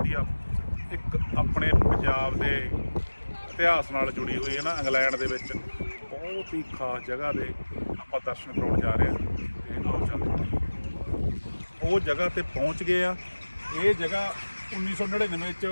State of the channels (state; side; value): inverted; both; correlation -1.00